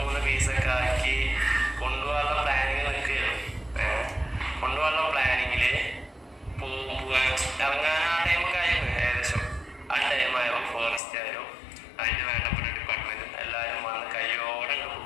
പീസൊക്കെ ആക്കി കൊണ്ടുപോകാനുള്ള പ്ലാനിങ് നിൽക്കുകയാണ്. കൊണ്ടുപോകാനുള്ള പ്ലാനിങ്ങില് ഇറങ്ങാൻ ആ ടൈമൊക്കെ ആയിരുന്നു. ഏകദേശം ആ ടൈമായപ്പോൾ ഫോറസ്റ്റ് ആയാലും അതിന് വേണ്ടപ്പെട്ട ഡിപ്പാർട്ട്മെന്റും എല്ലാവരും വന്ന് കയ്യോടെ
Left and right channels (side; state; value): right; drops out; at 11.0 s